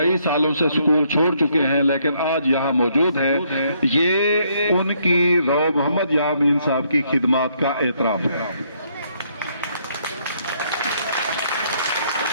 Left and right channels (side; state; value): both; inverted; correlation -0.70